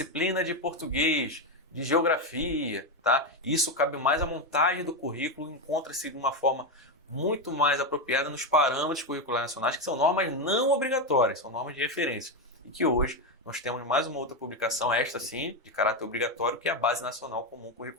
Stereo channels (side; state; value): both; normal; correlation 0.09